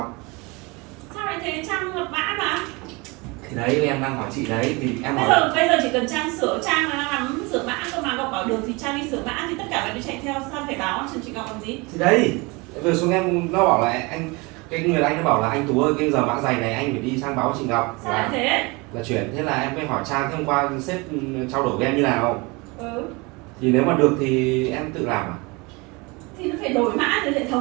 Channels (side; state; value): left; quieter; 26.3 dB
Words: Sao lại thế? Trang lập mã mà. Thì đấy em đang hỏi chị đấy, thì em hỏi Bây giờ chỉ cần Trang sửa, Trang là nắm sửa mã cơ mà. Ngọc bảo được thì Trang đi sửa mã, thì tất cả phải đi chạy theo, sao phải báo cho chị Ngọc làm gì? thì đấy vừa xuống em nó bảo là anh, cái người anh nó bảo là anh Tú ơi, cái giờ mã giày này anh phải đi sang báo chị Ngọc Sao lại thế? là chuyển. Thế là em mới hỏi Trang, thế hôm qua sếp trao đổi với em như nào, Ừ. thì nếu mà được thì em tự làm à? Thì nó phải đổi mã từ hệ